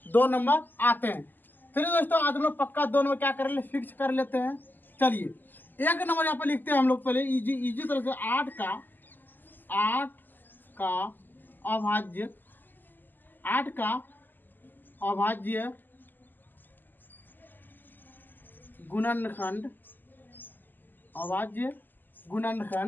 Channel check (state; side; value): late; right; 0.089 ms